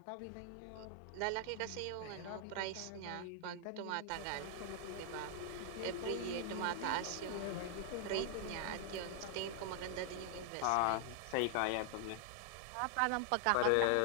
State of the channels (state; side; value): different; both; correlation 0.00